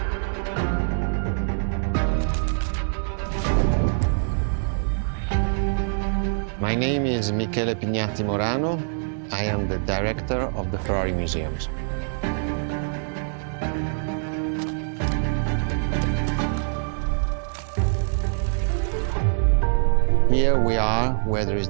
My name is Michele Pignatti Morano. I am the director of the Ferrari Museums. Here we are where there is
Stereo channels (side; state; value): left; silent; digital silence